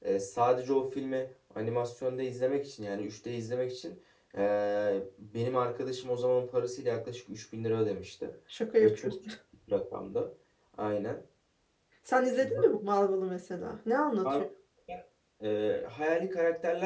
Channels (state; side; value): identical; both; correlation 1.00